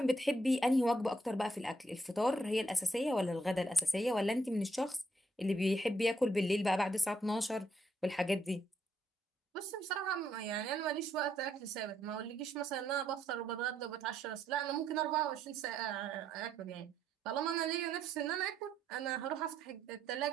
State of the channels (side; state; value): both; normal; correlation 0.74